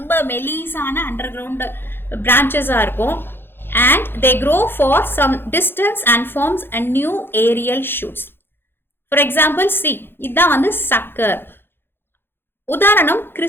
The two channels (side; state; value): right; late; 0.10 ms